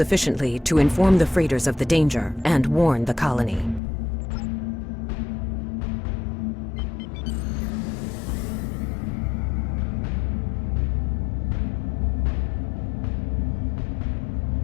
to inform the freighters of the danger and warn the colony.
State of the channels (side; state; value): right; drops out; at 3.8 s